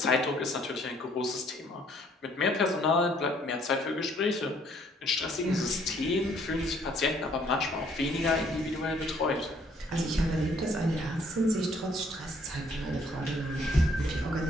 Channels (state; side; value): normal; both; correlation 0.63